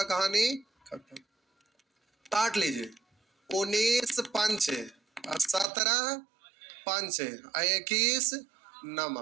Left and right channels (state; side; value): drops out; left; at 5.7 s